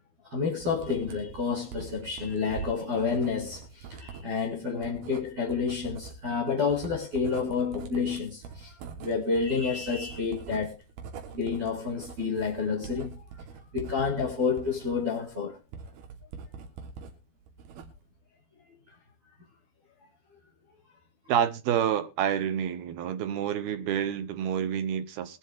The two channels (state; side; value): late; left; 12 ms